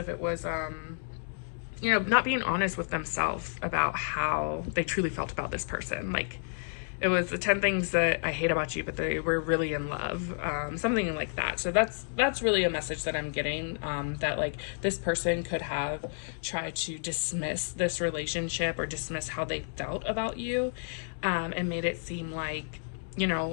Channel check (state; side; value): silent; right; digital silence